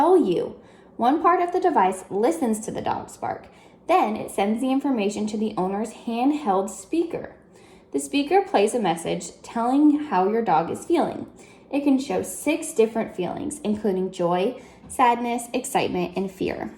you. One part of the device listens to the dog's bark. Then it sends the information to the owner's handheld speaker. The speaker plays a message telling how your dog is feeling. It can show 6 different feelings, including joy, sadness, excitement, and fear.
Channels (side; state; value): both; identical; correlation 1.00